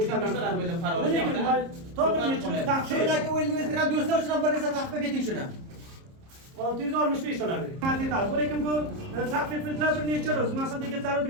To'g'ri, taqdirdagi o'yinlardan do'stlar uchun bir narsa taqdim eting shuni. $665. Lekin bu taqviflar bir necha ro'z. Masalan, yigitlar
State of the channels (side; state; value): left; late; 30 ms